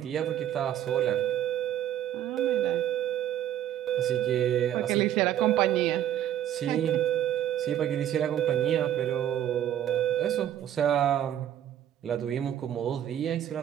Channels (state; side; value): quieter; left; 11.2 dB